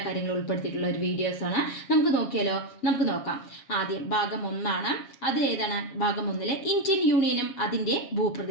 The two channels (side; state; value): right; late; 7.3 ms